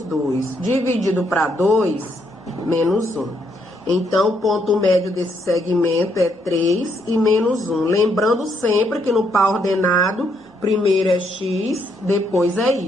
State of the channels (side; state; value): both; normal; correlation 0.74